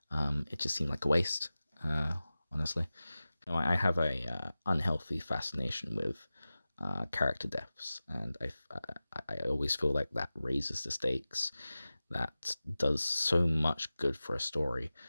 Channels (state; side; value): inverted; both; correlation -0.96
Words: It just seemed like a waste. Honestly, I have a unhealthy fascination with character deaths, and I always feel like that raises the stakes. That does so much good for a story,